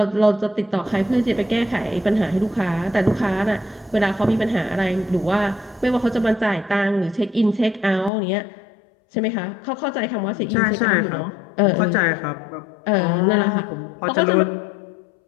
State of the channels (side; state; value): right; drops out; at 8.1 s